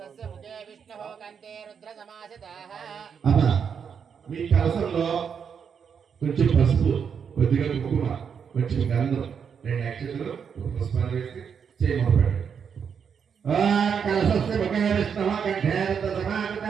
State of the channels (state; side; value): quieter; left; 7.0 dB